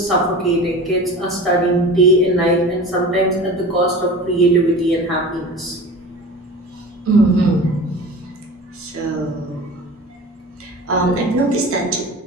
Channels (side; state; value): both; normal; correlation 0.36